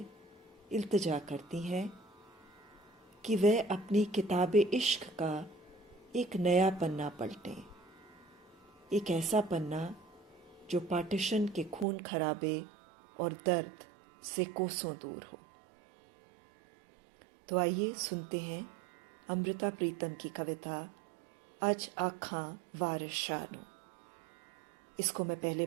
इल्तिजा करती हैं कि वह अपनी किताब इश्क का एक नया पन्ना पलटें, एक ऐसा पन्ना जो पार्टीशन के खून खराबे और दर्द से कोसों दूर हो। तो आइए सुनते हैं अमृता प्रीतम की कविता अज आखां वारिस शाह नूं। इसको मैं पहले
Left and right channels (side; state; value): left; drops out; at 11.9 s